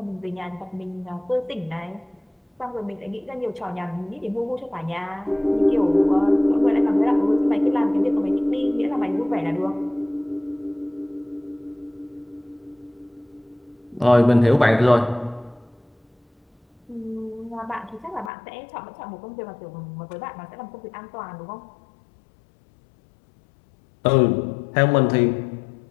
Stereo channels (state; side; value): drops out; right; at 18.3 s